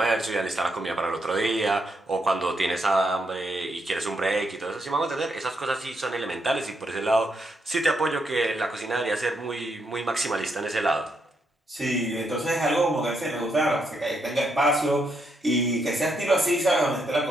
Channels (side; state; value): both; normal; correlation 0.78